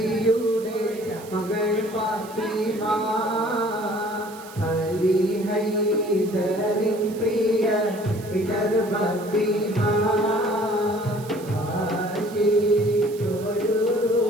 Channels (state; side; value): noise; right; hiss, 19 dB below the sound